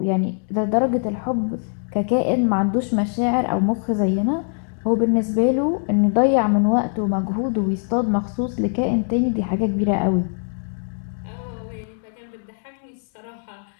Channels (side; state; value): right; silent; 64 dB below the other